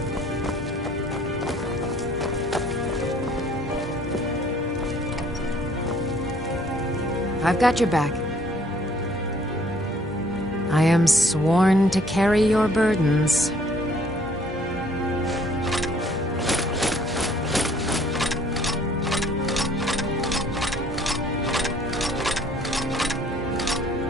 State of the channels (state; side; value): normal; both; correlation 0.59